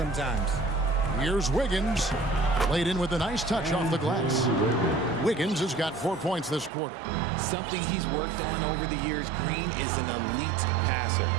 Here's Wiggins. Laid in with a nice touch off the glass. Wiggins has got 4 points this quarter. Something he's worked on over the years. Green is an elite passer.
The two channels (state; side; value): drops out; left; at 6.7 s